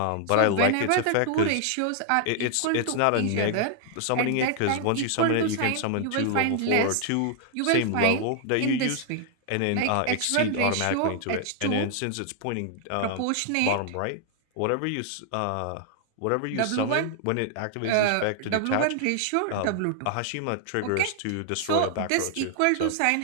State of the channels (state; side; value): different; both; correlation 0.00